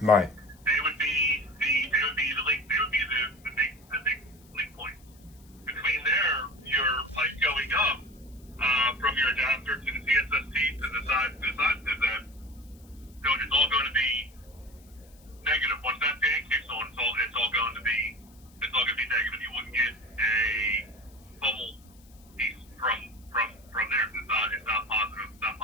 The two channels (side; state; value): left; noise; hiss, 28 dB below the sound